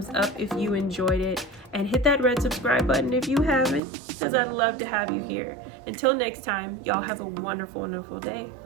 up if you enjoyed it, and hit that red subscribe button if you haven't, because I'd love to have you here. Until next time, y'all have a wonderful, wonderful day.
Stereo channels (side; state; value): left; drops out; at 3.8 s